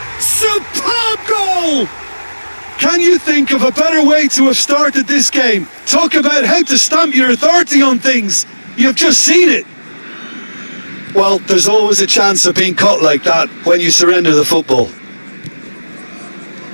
Superb goal! Can you think of a better way to have started this game? Talk about how to stamp your authority on things. You've just seen it. Well, there's always a chance of being caught like that when you surrender the football.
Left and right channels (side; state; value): both; inverted; correlation -1.00